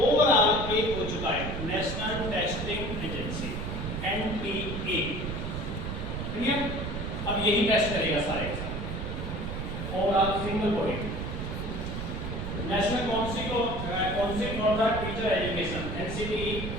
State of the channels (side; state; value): right; noise; rumble, 4 dB below the sound